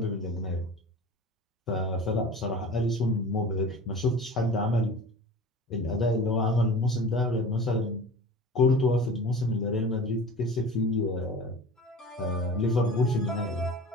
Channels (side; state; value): both; normal; correlation 0.37